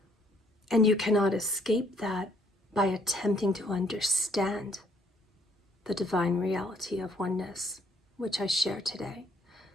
And you cannot escape that by attempting to understand the divine reality of oneness, which I share today.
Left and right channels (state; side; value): normal; both; correlation 0.65